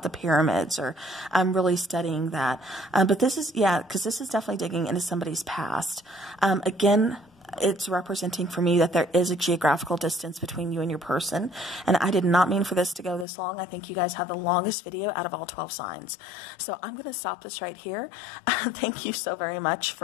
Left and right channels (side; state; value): right; drops out; at 13.2 s